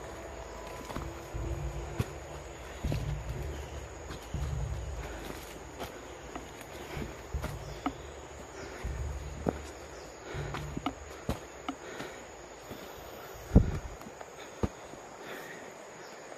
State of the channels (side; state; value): both; identical; correlation 1.00